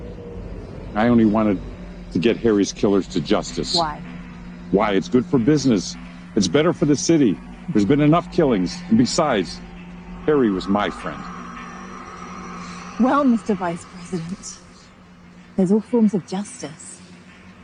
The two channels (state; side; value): identical; both; correlation 1.00